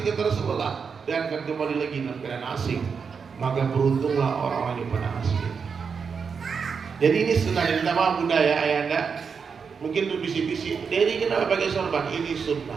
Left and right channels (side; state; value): left; quieter; 5.9 dB